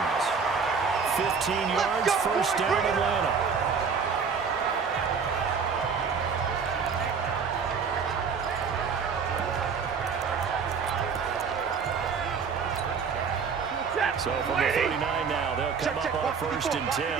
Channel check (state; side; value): quieter; left; 5.8 dB